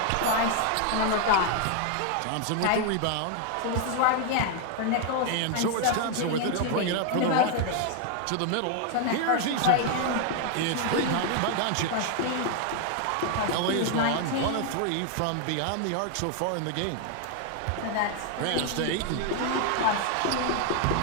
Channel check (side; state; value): both; different; correlation 0.00